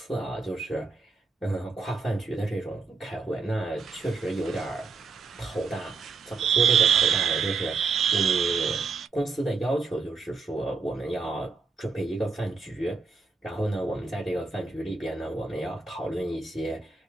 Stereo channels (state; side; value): quieter; left; 4.5 dB